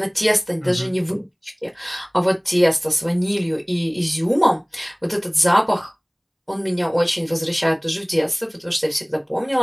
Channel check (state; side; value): identical; both; correlation 1.00